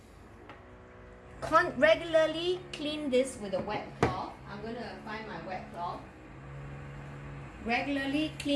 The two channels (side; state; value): both; identical; correlation 1.00